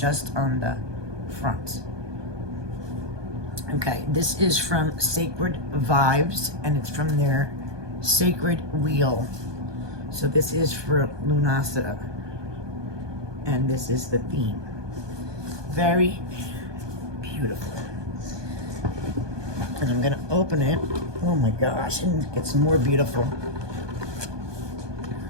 on the front. Okay, this is from Sacred Vibez, and it's from their Sacred Wheel. So this is for Lunacida, and this is the theme. Very beautiful. And I'm gonna open it. Oh my gosh, and it gets more beautiful.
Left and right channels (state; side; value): late; left; 1.2 ms